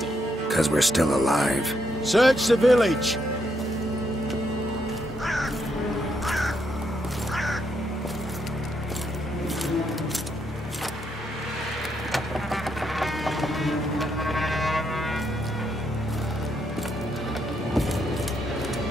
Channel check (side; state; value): both; normal; correlation 0.77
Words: 'Cause we're still alive. Search the village!